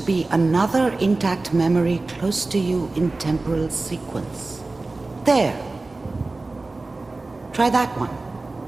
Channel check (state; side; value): quieter; left; 3.3 dB